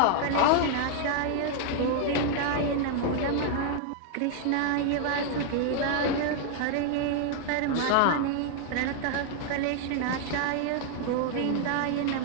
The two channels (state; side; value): different; both; correlation 0.00